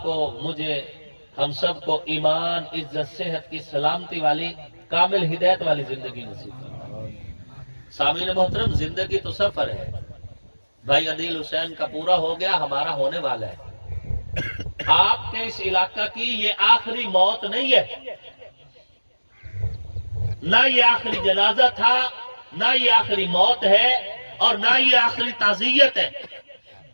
کو، مجھے، ہم سب کو ایمان، عزت، صحت کی سلامتی والی کامل ہدایت والی زندگی نصیب کرو. سامعین محترم زندگی تو سفر ہے. بھائی عدیل حسین کا پورا ہو گیا، ہمارا ہونے والا ہے. آپ کے اس علاقہ کی یہ آخری موت نہیں ہے، نہ یہ آخری جنازہ تھا، نہ یہ آخری موت ہے، اور نہ یہ آخری تعزیت ہے.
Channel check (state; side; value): inverted; both; correlation -1.00